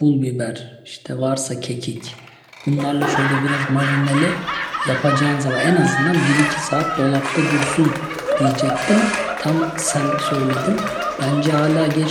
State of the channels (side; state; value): both; identical; correlation 1.00